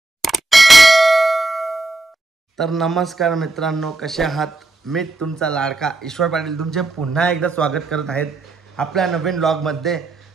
तर नमस्कार मित्रांनो, कसे आहात? मी तुमचा लाडका ईश्वर पाटील तुमचे पुन्हा एकदा स्वागत करत आहेत आपल्या नवीन व्लॉगमध्ये.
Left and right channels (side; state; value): left; quieter; 3.0 dB